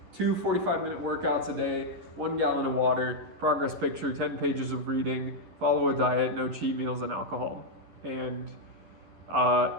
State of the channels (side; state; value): left; late; 11 ms